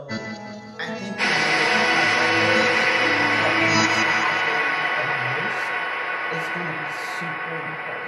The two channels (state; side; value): identical; both; correlation 1.00